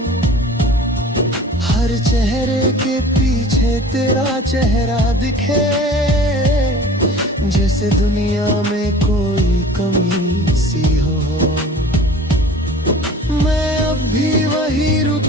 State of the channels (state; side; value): normal; both; correlation 0.44